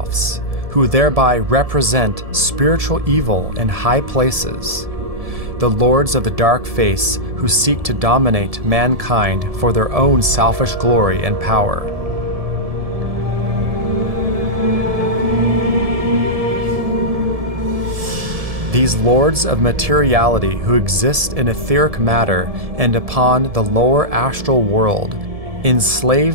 who thereby represent spiritual evil in high places, the lords of the dark face who seek to dominate mankind for their own selfish glory and power. These lords of materiality who exist in etheric matter and upon the lower astral world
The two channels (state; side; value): late; left; 1.7 ms